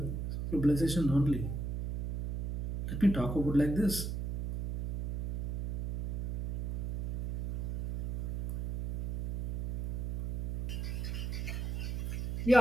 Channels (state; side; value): noise; right; hum, 3 dB below the sound